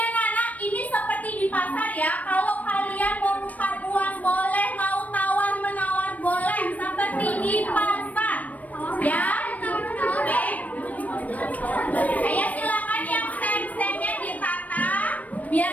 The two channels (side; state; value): right; late; 0.072 ms